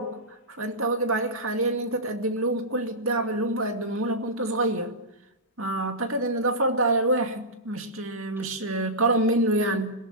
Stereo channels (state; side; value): normal; both; correlation -0.14